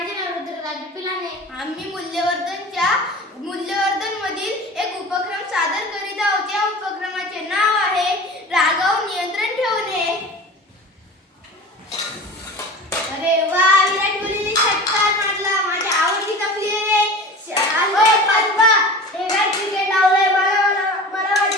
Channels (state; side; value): normal; both; correlation 0.36